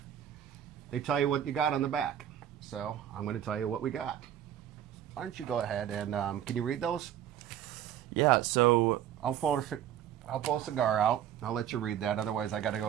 they tell you what you got on the back. So I'm going to tell you what we got. Why don't you go ahead and can you read those? Yeah. So I'll pull a cigar out. I'll let you read that. Otherwise, I got to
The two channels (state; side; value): quieter; left; 10.6 dB